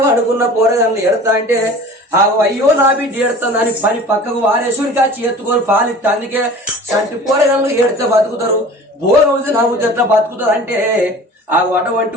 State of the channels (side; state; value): both; normal; correlation 0.42